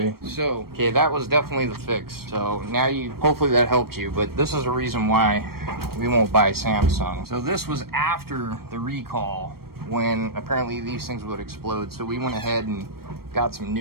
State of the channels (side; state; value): left; late; 0.94 ms